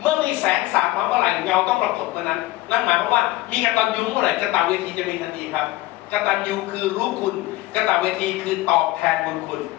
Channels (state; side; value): quieter; right; 18.0 dB